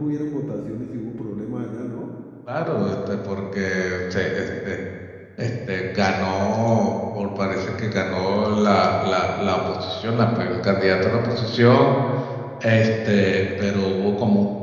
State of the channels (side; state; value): both; identical; correlation 1.00